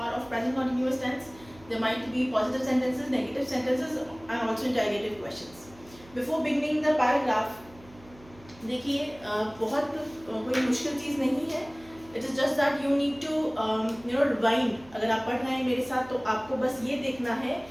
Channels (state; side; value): noise; right; hum, 23 dB below the sound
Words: of present continuous tense. There might be positive sentences, negative sentences, and also interrogative questions. Before beginning the paragraph, देखिए बहुत कोई मुश्किल चीज़ नहीं है. It is just that you need to rewind. अगर आप पढ़ रहे हैं मेरे साथ तो आपको बस ये देखना है